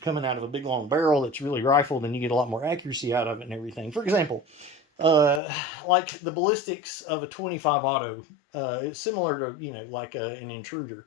out of a big long barrel that's really rifled, and you get a lot more accuracy out of it and everything. For example, like the ballistics of a 25 auto, it's similar to, like an intruder.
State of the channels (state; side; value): drops out; right; at 5.4 s